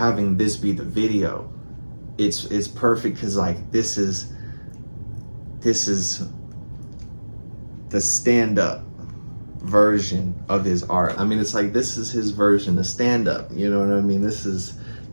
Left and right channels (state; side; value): inverted; both; correlation -1.00